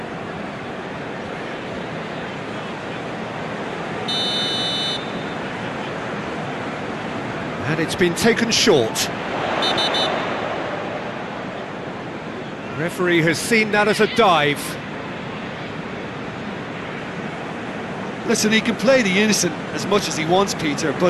And it's been taken short. Referee has seen that as a dive. Listen, he can play the innocent as much as he wants, Peter,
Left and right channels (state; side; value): identical; both; correlation 1.00